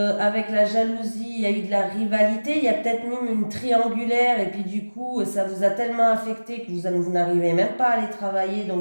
la jalousie, il y a eu de la rivalité, il y a peut-être même une triangulaire, et puis du coup, ça vous a tellement affecté que vous n'arrivez même pas à aller travailler,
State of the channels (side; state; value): both; inverted; correlation -1.00